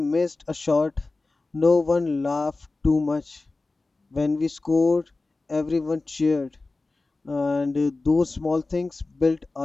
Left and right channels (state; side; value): quieter; right; 3.4 dB